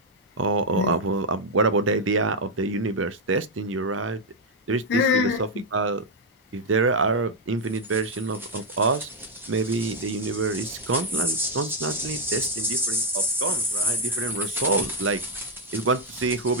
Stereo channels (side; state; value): both; normal; correlation 0.00